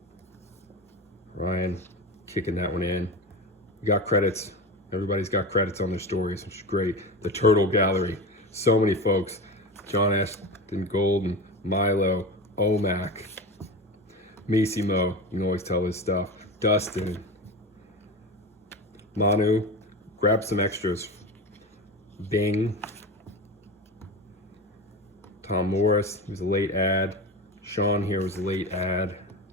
Ryan kicking that one in. We got credits. Everybody's got credits on their stories, which is great. The Turtle Gallery, so many folks. John Ashton Golden, Milo, Omac, Missimo, you can always tell his stuff. Dustin, Manu, grab some extras. Bing, Tom Morris, he was a late ad. Sean here was a late ad.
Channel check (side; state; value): both; normal; correlation 0.25